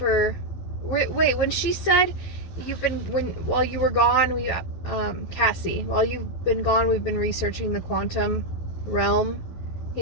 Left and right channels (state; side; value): late; right; 11 ms